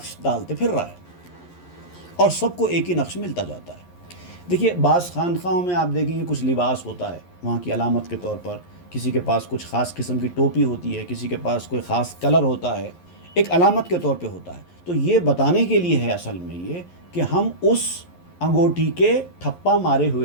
ڈالتے پھر رہا ہے، اور سب کو ایک ہی نقش ملتا جاتا ہے۔ دیکھیے بعض خانقاہوں میں آپ دیکھیں گے کچھ لباس ہوتا ہے وہاں کی علامت کے طور پر، کسی کے پاس کچھ خاص قسم کی ٹوپی ہوتی ہے، کسی کے پاس کوئی خاص کلر ہوتا ہے، ایک علامت کے طور پہ ہوتا ہے۔ تو یہ بتانے کے لیے ہے اصل میں یہ کہ ہم اس انگوٹھی کے ٹھپا مارے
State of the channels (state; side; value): late; right; 11 ms